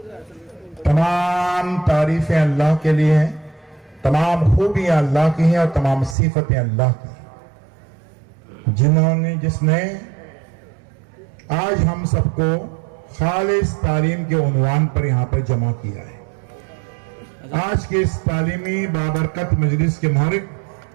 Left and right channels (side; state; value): left; drops out; at 6.2 s